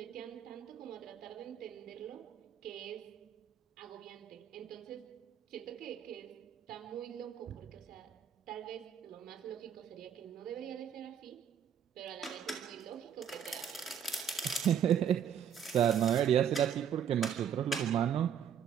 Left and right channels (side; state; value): left; quieter; 8.6 dB